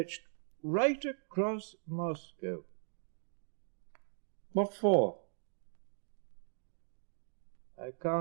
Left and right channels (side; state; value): left; silent; digital silence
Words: right across Moscow. What for? I